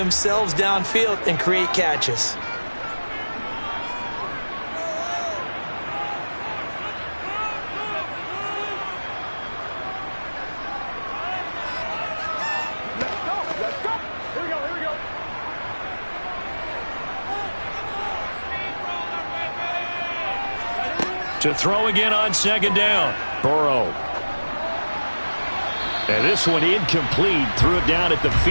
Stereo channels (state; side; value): inverted; both; correlation -1.00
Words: downfield and create catches. To throw again on 2nd down. Burrow. And this one incomplete. Threw it down at the